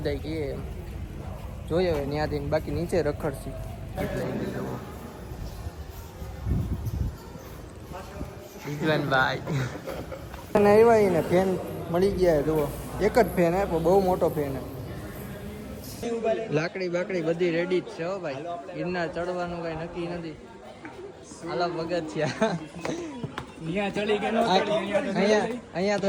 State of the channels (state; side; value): identical; both; correlation 1.00